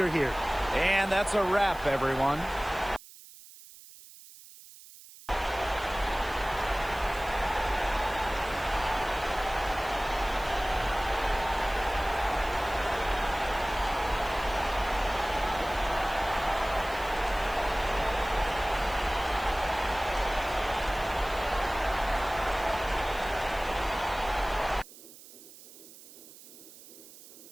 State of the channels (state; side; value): noise; right; hiss, 19 dB below the sound